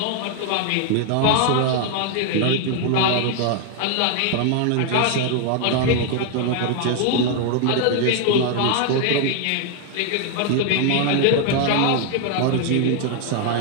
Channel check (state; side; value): different; both; correlation 0.00